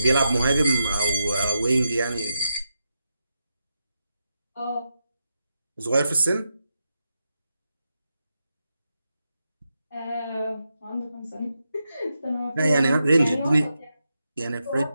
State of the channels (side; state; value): both; inverted; correlation -0.87